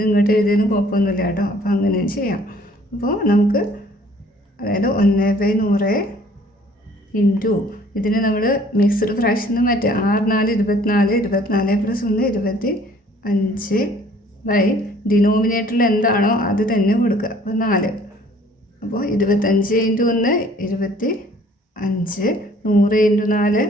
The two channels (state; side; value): normal; both; correlation 0.56